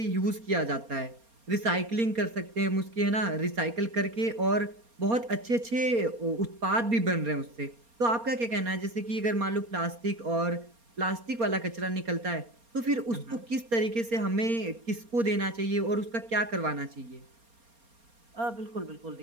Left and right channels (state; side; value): late; left; 4.3 ms